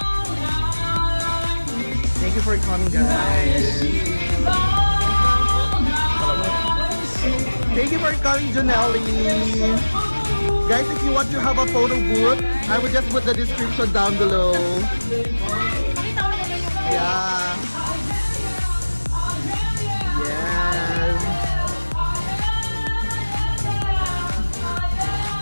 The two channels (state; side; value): inverted; both; correlation -1.00